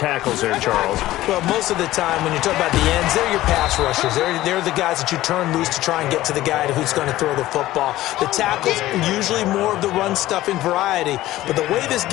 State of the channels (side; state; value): right; quieter; 15.7 dB